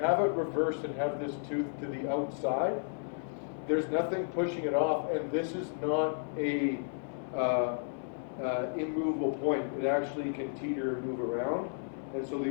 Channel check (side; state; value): right; silent; 56 dB below the other